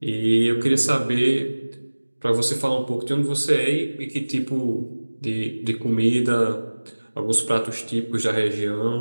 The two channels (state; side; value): inverted; both; correlation -1.00